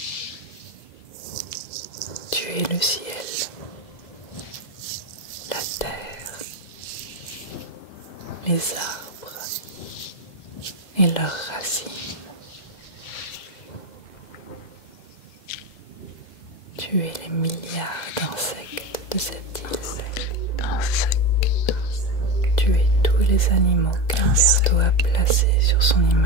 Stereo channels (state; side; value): late; right; 2.0 ms